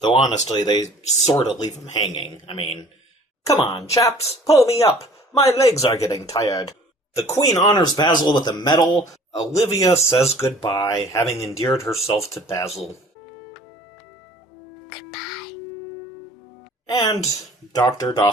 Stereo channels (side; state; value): both; normal; correlation 0.50